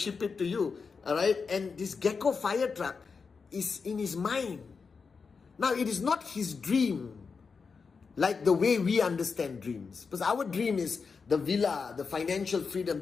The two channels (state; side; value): quieter; right; 5.2 dB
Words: it to you." All right, and this Gecko fire truck is in his mind. Now, it is not his dream like the way we understand dreams. Because our dream is the villa, the financial freedom.